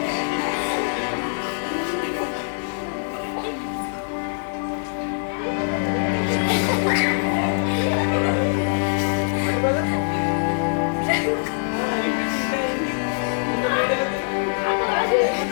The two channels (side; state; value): right; silent; digital silence